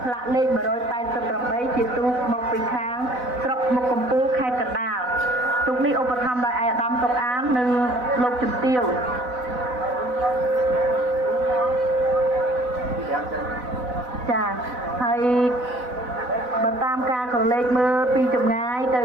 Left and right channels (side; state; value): left; late; 4.0 ms